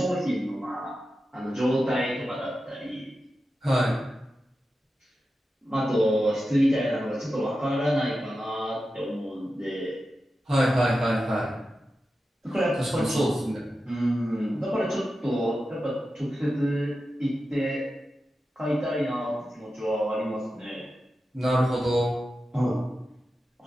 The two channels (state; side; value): normal; both; correlation 0.91